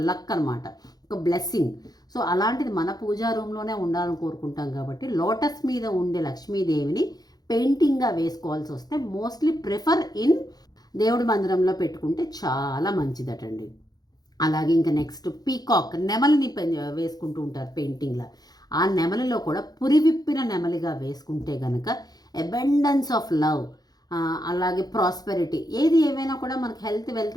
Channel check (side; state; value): right; late; 0.19 ms